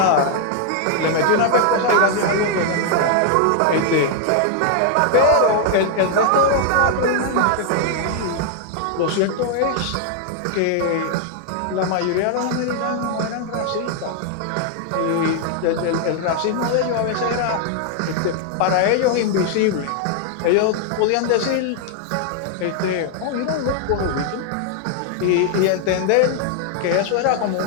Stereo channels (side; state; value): both; different; correlation 0.00